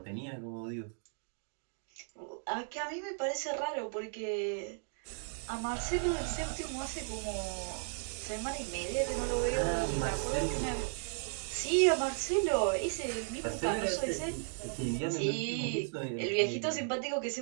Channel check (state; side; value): silent; left; 54 dB below the other